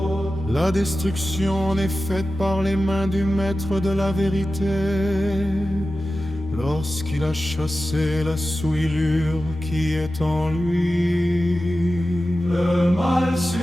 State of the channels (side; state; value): both; normal; correlation 0.94